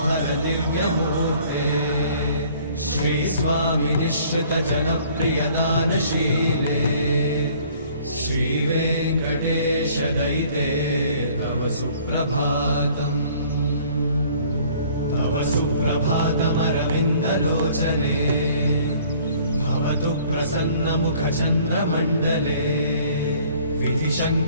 दिव्यमूर्ते श्री स्वामी निश्चित जनप्रिय दानशीले श्री वेङ्कटेश दयिते तव सुप्रभातम् तव सुप्रभातमरविन्दलोचने भवतु प्रसन्नमुखचन्द्रमण्डले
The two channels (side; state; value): both; inverted; correlation -0.55